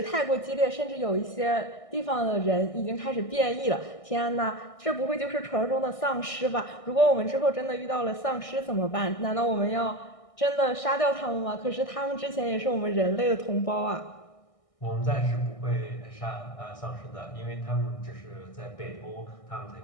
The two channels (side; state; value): right; late; 1.6 ms